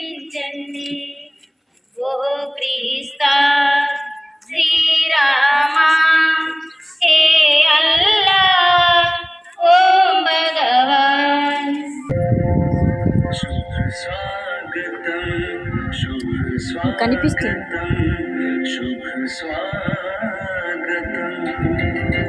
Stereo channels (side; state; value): both; identical; correlation 1.00